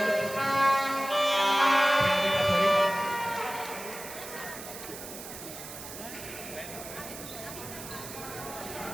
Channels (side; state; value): right; noise; hiss, 12 dB below the sound